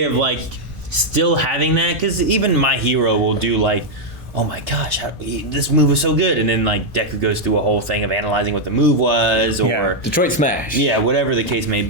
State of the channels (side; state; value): both; normal; correlation 0.00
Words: of like still having that, because even My Hero will do like, oh my gosh, this move was so good, and then like Deku goes through a whole thing of analyzing what the move was, or Detroit Smash. yeah, whatever the case may